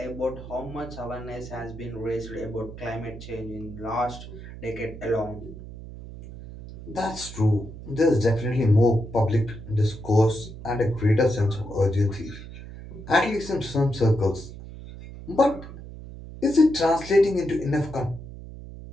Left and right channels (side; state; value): right; noise; hum, 13 dB below the sound